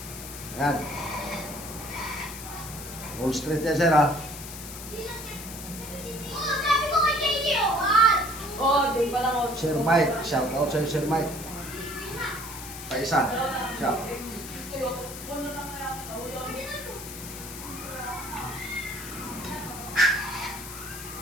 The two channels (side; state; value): left; noise; hiss, 11 dB below the sound